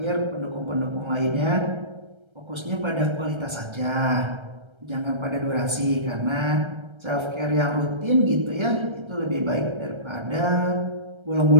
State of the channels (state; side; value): late; left; 1.3 ms